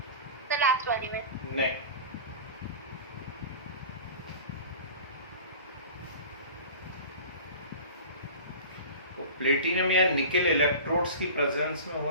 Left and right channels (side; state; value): both; inverted; correlation -0.37